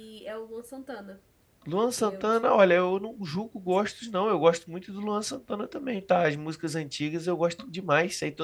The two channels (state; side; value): identical; both; correlation 1.00